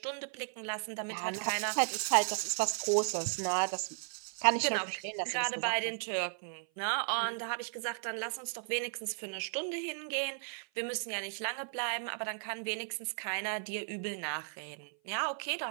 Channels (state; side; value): silent; left; 54 dB below the other